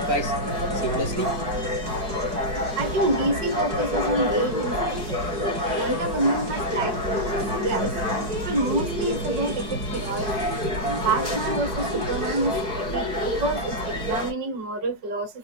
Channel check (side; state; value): left; late; 4.6 ms